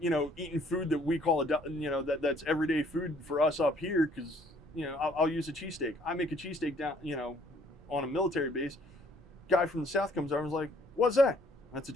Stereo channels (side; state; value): both; normal; correlation 0.62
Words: food that we call that's everyday food for us up here, because, you know, I'll use a cheesesteak. I make a cheesesteak down, you know, on a military base. Guy from the south comes over and is like, "What's that?" "That's a